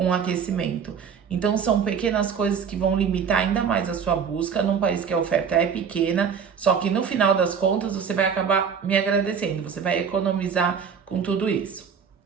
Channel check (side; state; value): left; quieter; 6.8 dB